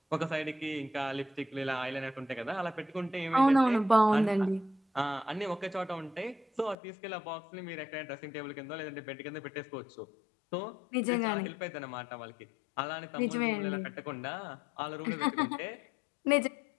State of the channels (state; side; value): drops out; right; at 6.8 s